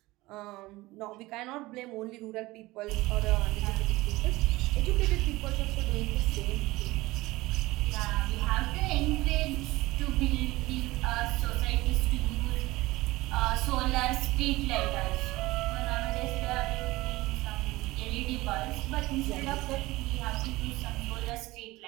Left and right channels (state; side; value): quieter; left; 19.7 dB